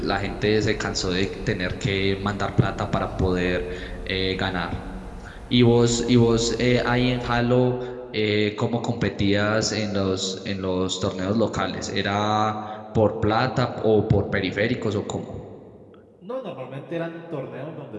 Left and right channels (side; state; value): both; identical; correlation 1.00